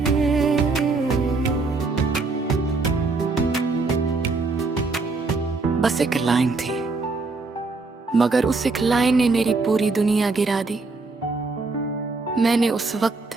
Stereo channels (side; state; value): left; quieter; 3.8 dB